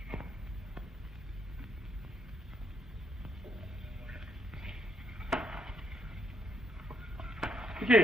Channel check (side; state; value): both; normal; correlation 0.76